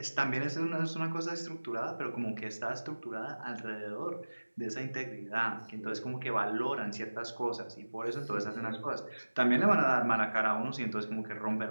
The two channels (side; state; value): both; inverted; correlation -1.00